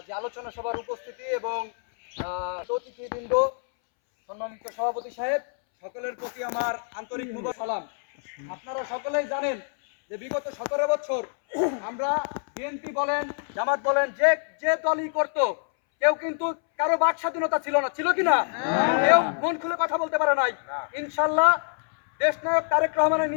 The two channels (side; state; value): right; silent; 61 dB below the other